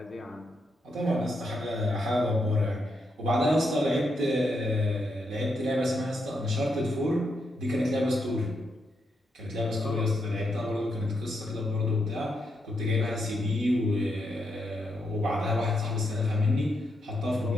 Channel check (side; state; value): both; normal; correlation 0.81